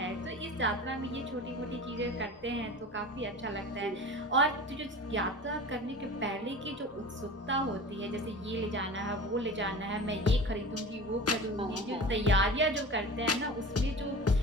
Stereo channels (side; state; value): both; normal; correlation 0.36